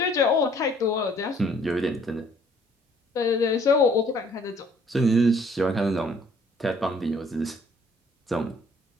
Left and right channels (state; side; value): normal; both; correlation 0.60